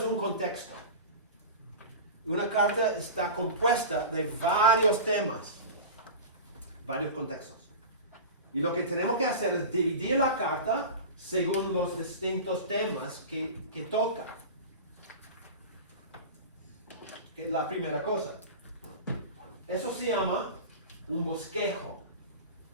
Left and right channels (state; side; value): inverted; both; correlation -0.30